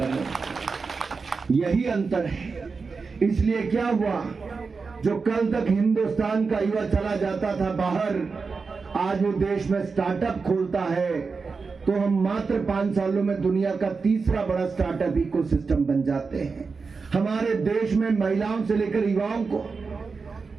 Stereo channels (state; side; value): quieter; left; 4.7 dB